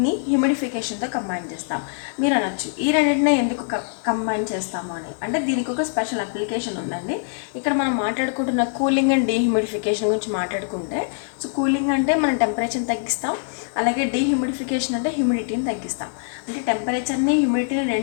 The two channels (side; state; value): right; silent; digital silence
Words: హ్యూమిడిఫికేషన్తో కంబైన్ చేస్తాం. మీరు అనొచ్చు, ఈ రెండింటిని ఎందుకు కంబైన్ చేస్తాము అని. అంటే దీనికి ఒక స్పెషల్ అప్లికేషన్ ఉందండి. ఇక్కడ మనం మాట్లాడుకుంటున్న కూలింగ్ అండ్ డీహ్యూమిడిఫికేషన్ గురించి మాట్లాడుకుంటే, సో కూలింగ్ అంటే మనం టెంపరేచర్ని తగ్గిస్తాం, అలాగే డీహ్యూమిడిఫికేషన్ అంటే హ్యూమిడిటీని తగ్గిస్తాం. అంటే టెంపరేచర్ని, హ్యూమిడిటీని